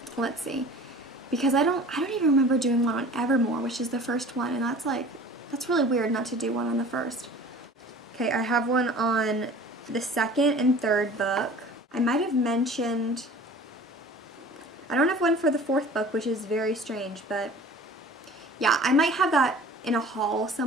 let's see, because I don't even remember doing one on Evermore, which is the first one, and that's really weird not to do one on the first. Okay, I have one on the 2nd and 3rd book. I might have mentioned, I don't have one for the 4th book, which is very strange, but yeah, I might have that in a haul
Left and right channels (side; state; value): both; normal; correlation 0.44